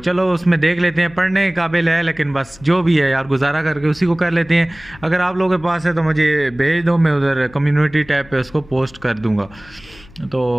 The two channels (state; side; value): noise; left; hum, 23 dB below the sound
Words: उसमें देख लेते हैं। पढ़ने के काबिल है लेकिन बस जो भी है यार गुजारा करके उसी को कर लेते हैं। अगर आप लोगों के पास है तो मुझे भेज दो, मैं उधर कम्युनिटी टैब पे उसको पोस्ट कर दूँगा। तो